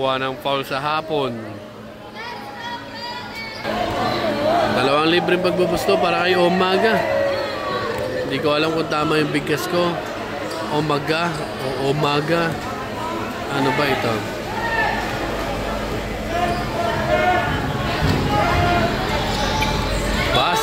ng foul sa hapon. Dalawang libreng pagbubusto para kay Umaga. Hindi ko alam kung tama yung bigkas ko. Umaga o Umaga. Ano ba ito?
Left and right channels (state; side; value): identical; both; correlation 1.00